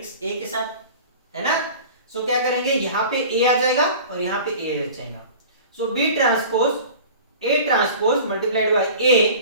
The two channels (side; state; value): both; inverted; correlation -0.40